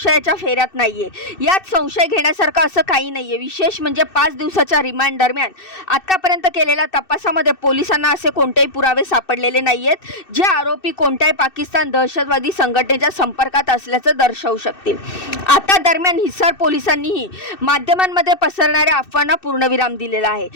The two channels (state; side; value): late; right; 2.6 ms